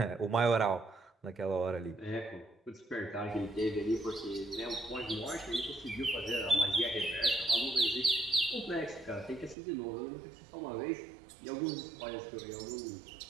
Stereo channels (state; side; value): drops out; left; at 9.6 s